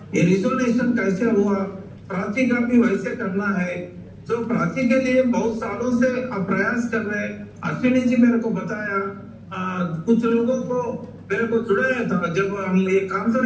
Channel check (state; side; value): identical; both; correlation 1.00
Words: ये रिजोल्यूशन कैसे हुआ, प्राची का भी वैसे करना है। जो प्राची के लिए बहुत सालों से आप प्रयास कर रहे हैं। अश्विनी जी मेरे को बताया, कुछ लोगों को मेरे को जुड़ाया था जब हम ये